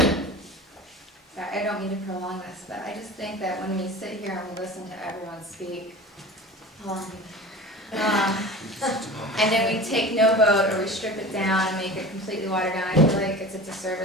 I don't mean to prolong this, but I just think that when we sit here and we listen to everyone speak, and then we take no vote, or we strip it down and make it completely watered down, I feel like it's a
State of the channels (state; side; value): normal; both; correlation 0.36